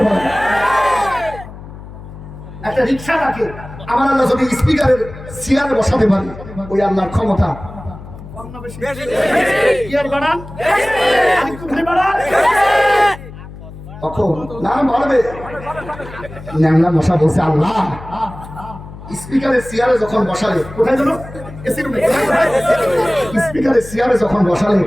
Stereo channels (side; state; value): left; noise; hum, 15 dB below the sound